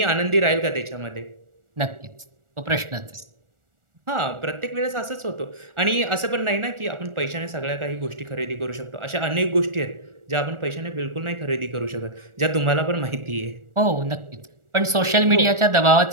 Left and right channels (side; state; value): left; late; 1.4 ms